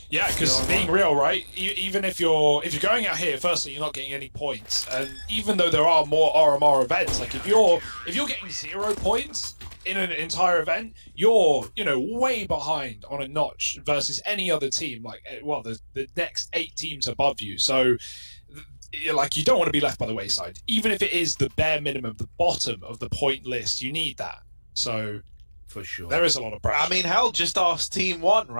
Yeah, because being real, right? Even if you're going out here, firstly, you're not getting any points, and even though there are more RMR events, like if you're getting 0 points in an entire event, you're way behind on a notch versus any other team. Like, well, the next 8 teams above you. So, like, you don't want to be left by the wayside, even if it is the bare minimum, the bottom of the point list. You need that. So. For sure. There is a lot of pressure. I mean, hell, just ask Team 1,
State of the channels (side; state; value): both; inverted; correlation -1.00